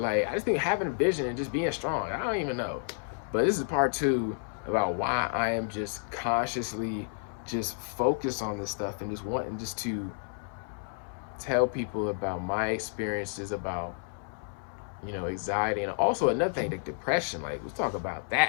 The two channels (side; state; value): right; silent; 57 dB below the other